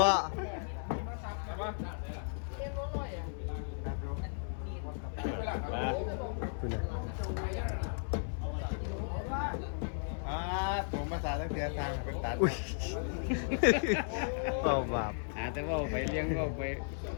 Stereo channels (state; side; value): silent; right; 54 dB below the other